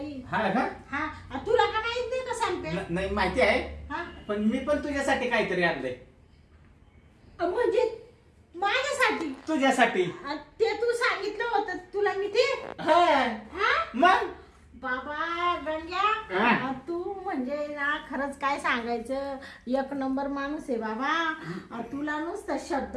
हा का? हा तुला का माहित नाही का सांगते? नाही माहिती आहे, हा पण मी पण तुझ्यासाठी काहीतरी आणलंय. म्हणजे माझ्यासाठी? तुझ्यासाठी. ते तू सांगितलं होतं तुला मी ते. हा हा मग बाबा गंग्या, हा. तू म्हणजे म्हणजे ना खरंच काय सांगायचं, एक नंबर माणूस आहे बाबा. तुला नुसतं शब्द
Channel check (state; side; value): identical; both; correlation 1.00